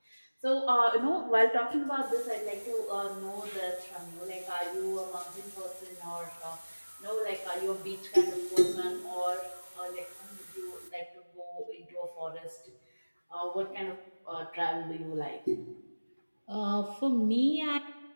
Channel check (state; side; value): inverted; both; correlation -1.00